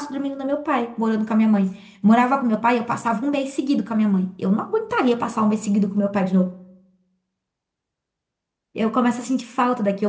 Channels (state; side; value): identical; both; correlation 1.00